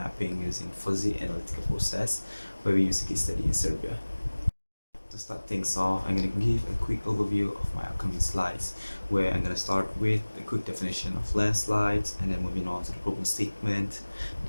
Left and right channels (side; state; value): both; inverted; correlation -1.00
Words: using Fuzzy Analytical Process, where we use a case study in Serbia. To start things off, I'm going to give a quick overview of my upcoming slides, where I'm going to start with a quick definition of landslides, and then moving on to the problem statement,